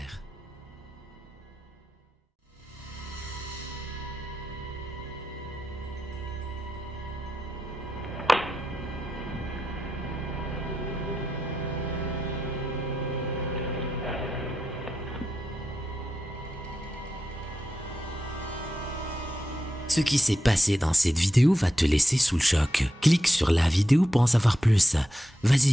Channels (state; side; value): normal; both; correlation 0.87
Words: Ce qui s'est passé dans cette vidéo va te laisser sous le choc. Clique sur la vidéo pour en savoir plus.